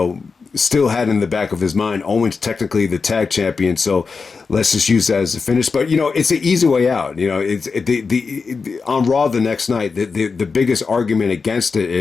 still had in the back of his mind, Owen's technically the tag champion, so let's just use that as a finish. But it's an easy way out. It's on Raw the next night. The biggest argument against it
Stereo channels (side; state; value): right; quieter; 4.8 dB